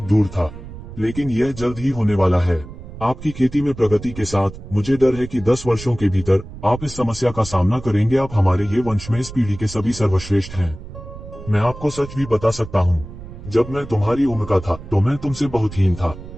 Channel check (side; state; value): right; noise; rumble, 13 dB below the sound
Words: दूर था, लेकिन यह जल्द ही होने वाला है। आपकी खेती में प्रगति के साथ मुझे डर है कि 10 वर्षों के भीतर आप इस समस्या का सामना करेंगे। आप हमारे ये वंश में इस पीढ़ी के सभी सर्वश्रेष्ठ हैं। मैं आपको सच भी बता सकता हूँ, जब मैं तुम्हारी उम्र का था तो मैं तुमसे बहुत हीन था।